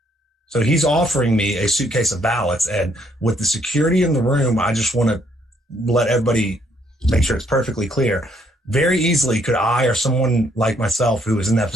So he's offering me a suitcase of ballots. And with the security in the room, I just want to let everybody make sure it's perfectly clear. Very easily could I or someone like myself who was in that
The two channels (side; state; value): both; normal; correlation 0.69